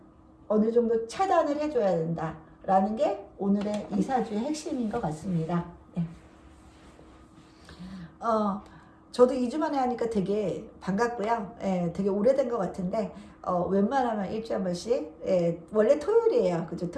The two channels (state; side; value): identical; both; correlation 1.00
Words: 어느 정도 차단을 해줘야 된다. 라는 게 오늘의 이사주의 핵심인 것 같습니다. 네. 저도 2주 만에 하니까 되게 반갑고요. 예, 되게 오래된 것 같은데, 웬만하면 일주일에 한 번씩, 예, 원래 토요일이에요. 그죠?